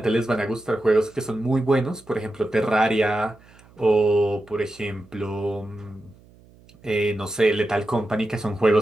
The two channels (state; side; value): noise; right; hum, 27 dB below the sound